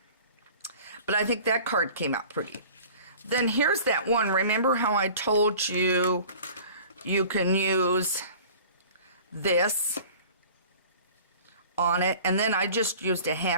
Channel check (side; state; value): both; inverted; correlation -0.44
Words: But I think that card came out pretty. Then here's that one. Remember how I told you you can use this on it? And then I just used a